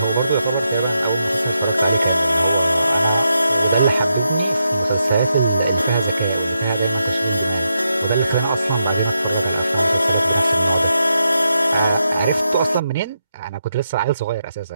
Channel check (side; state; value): both; inverted; correlation -0.84